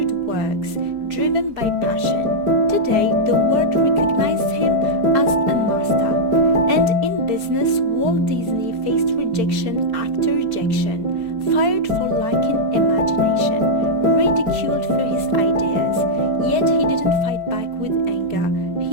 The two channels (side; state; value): left; late; 4.8 ms